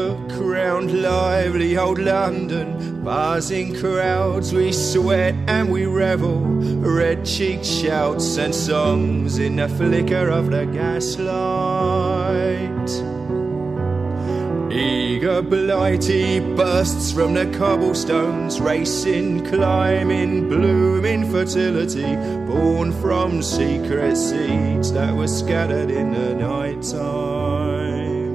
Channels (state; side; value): quieter; left; 4.1 dB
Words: round lively old London, buzzing crowds, we sweat and we revel, red-cheeked shouts and songs in the flicker of the gaslight. Eager blighty bursts from the cobblestones, racing, climbing, blooming fertility, born from secret seeds that were scattered in the night time.